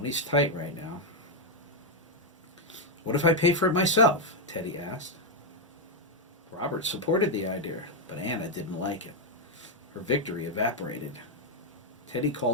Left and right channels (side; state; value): both; normal; correlation 0.01